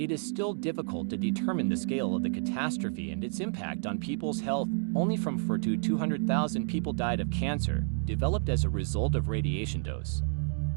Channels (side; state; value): left; silent; 58 dB below the other